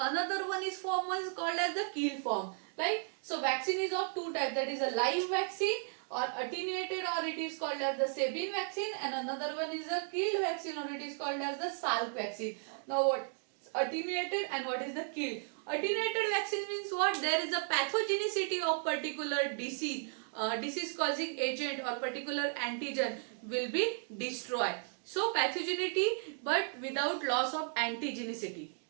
one is called as the kill form. Right? So vaccine is of two types, that is a live vaccine or attenuated, or it is called as the Sabin vaccine, and another one is a killed vaccine, or it is called as the Salk vaccine. Now what attenuated and what is the killed? Attenuated vaccine means what? There is a pathogenicity of particular disease causing agent or particular antigen will be destroyed. So pathogenicity but without loss of antigenicity.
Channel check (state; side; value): silent; left; 54 dB below the other